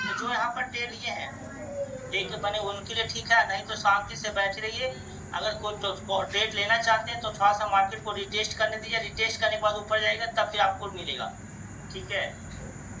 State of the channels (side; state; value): both; identical; correlation 1.00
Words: तो जो यहाँ पर ट्रेड लिए हैं देख बने उनके लिए ठीक है, नहीं तो शांति से बैठे रहिए। अगर कोई तो ट्रेड लेना चाहते हैं तो थोड़ा सा मार्केट को रिटेस्ट करने दीजिए, रिटेस्ट करने के बाद ऊपर जाएगा तब फिर आपको मिलेगा, ठीक है।